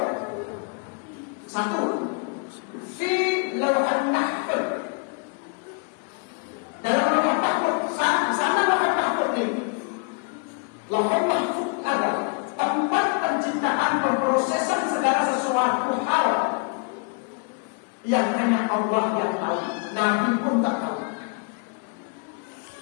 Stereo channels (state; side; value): quieter; right; 37.9 dB